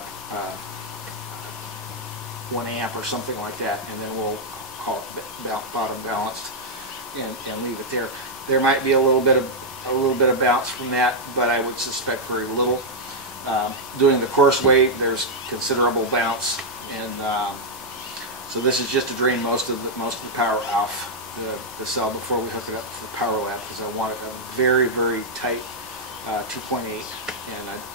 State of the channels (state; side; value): normal; both; correlation -0.04